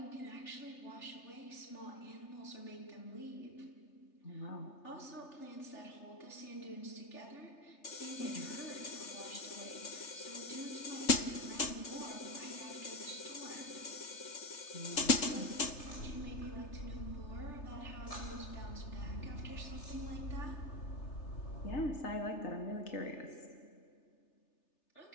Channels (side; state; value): right; late; 3.3 ms